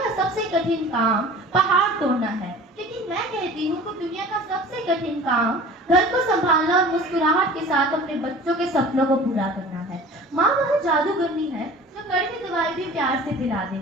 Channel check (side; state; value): both; normal; correlation 0.43